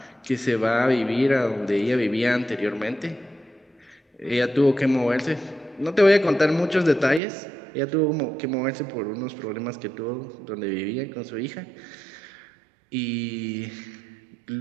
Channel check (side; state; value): left; drops out; at 7.2 s